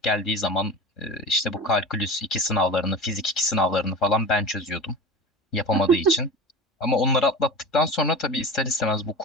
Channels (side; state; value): both; normal; correlation 0.31